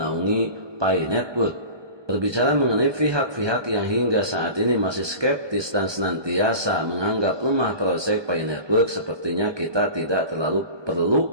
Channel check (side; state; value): left; late; 1.2 ms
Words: FI Network. Berbicara mengenai pihak-pihak yang hingga saat ini masih skeptis dan senantiasa menganggap lemah proyek FI Network, sepertinya kita tidak terlalu